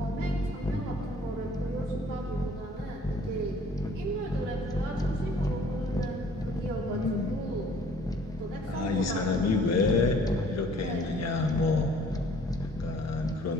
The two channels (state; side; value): normal; both; correlation 0.55